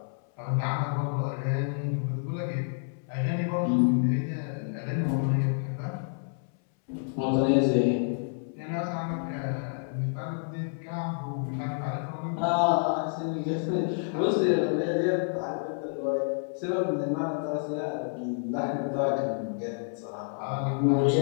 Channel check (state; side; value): silent; right; 59 dB below the other